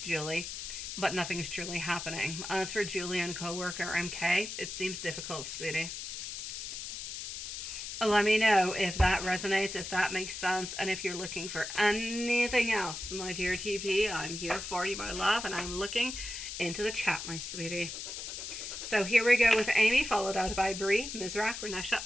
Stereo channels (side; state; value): left; noise; hiss, 7 dB below the sound